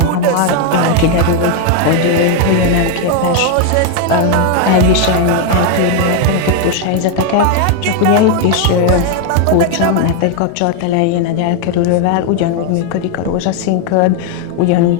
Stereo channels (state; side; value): different; both; correlation 0.01